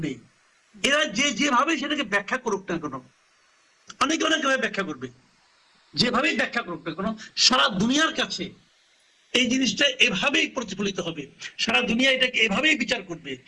নেই। এরা যেভাবে সেটাকে ব্যাখ্যা করুক না কেন, অনেকে অনেকভাবে ব্যাখ্যা করবে, যেভাবেই ব্যাখ্যা করুক না কেন, সারা দুনিয়ার কাছে এই জিনিসটা এভাবেই প্রতিফলিত হবে, সারা দুনিয়া এটাকে এভাবেই বিচার করবে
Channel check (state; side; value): identical; both; correlation 1.00